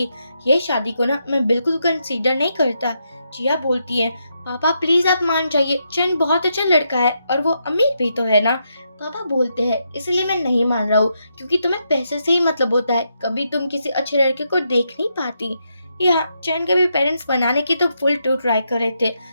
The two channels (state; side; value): inverted; both; correlation -0.81